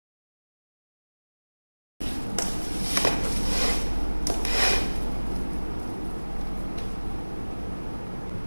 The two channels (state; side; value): inverted; both; correlation -1.00